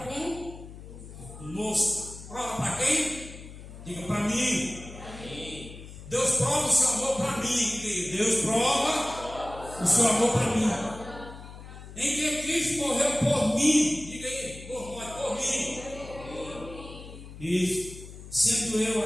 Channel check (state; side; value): noise; left; hum, 15 dB below the sound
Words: conosco. Prova para quem? Diga para mim. Deus prova o seu amor para mim. Deus prova o seu amor para mim. Em que Cristo morreu por mim. Diga aí, por mim. Isso. Sendo eu